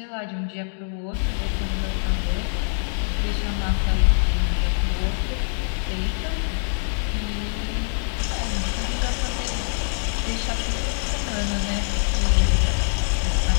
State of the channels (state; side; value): silent; right; digital silence